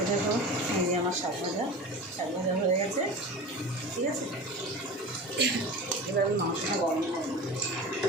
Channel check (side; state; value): both; normal; correlation 0.33